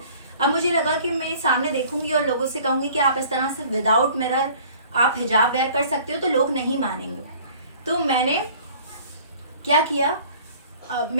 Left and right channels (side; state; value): both; inverted; correlation -0.51